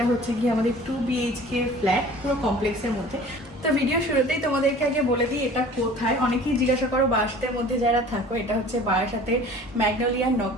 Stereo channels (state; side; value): normal; both; correlation 0.45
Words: হচ্ছে গিয়ে আমাদের 2 BHK ফ্ল্যাট পুরো কমপ্লেক্সের মধ্যে। তো ভিডিও শুরুতেই তোমাদেরকে আগে বলে দিই এটা কোথায়। অনেকেই জিজ্ঞাসা করো বারাসাতের মধ্যে যারা থাকো, এটা হচ্ছে বারাসাতের ম্যাগনোলিয়া